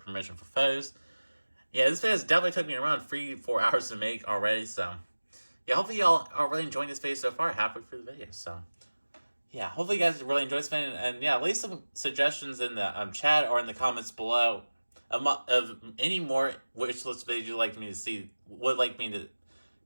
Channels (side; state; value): both; inverted; correlation -1.00